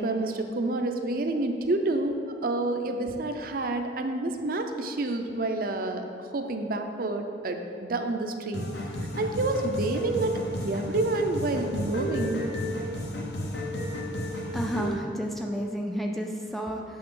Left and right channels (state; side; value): normal; both; correlation 0.43